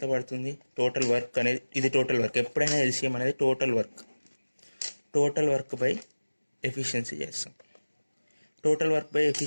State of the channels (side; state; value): both; inverted; correlation -1.00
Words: పడుతుంది? టోటల్ వర్క్ అనేది, ఇది టోటల్ వర్క్. ఎప్పుడైనా LCM అనేది టోటల్ వర్క్ బై ఎఫిషియన్సీ చేస్తాం. టోటల్ వర్క్ బై